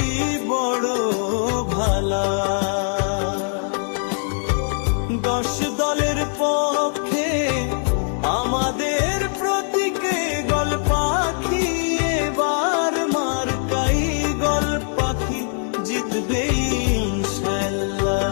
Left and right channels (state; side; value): silent; right; 63 dB below the other